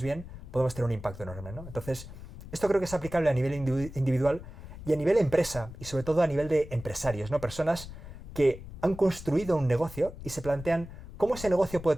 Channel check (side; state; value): left; noise; rumble, 13 dB below the sound